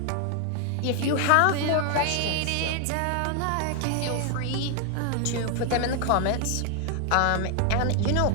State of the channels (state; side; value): different; both; correlation 0.01